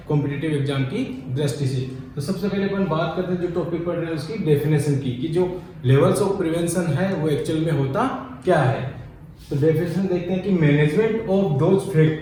कॉम्पिटिटिव एग्जाम की दृष्टि से। तो सबसे पहले अपन बात करते हैं जो टॉपिक पढ़ रहे हैं उसकी डेफिनेशन की कि जो लेवल्स ऑफ प्रिवेंशन है वो एक्चुअल में होता क्या है। तो डेफिनेशन देखते हैं कि management of those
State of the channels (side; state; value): both; identical; correlation 1.00